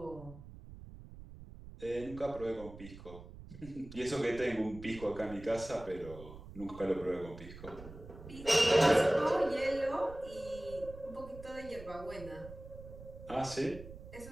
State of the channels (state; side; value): noise; right; rumble, 15 dB below the sound